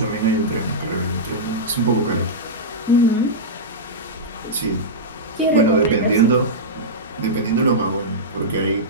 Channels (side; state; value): both; normal; correlation -0.11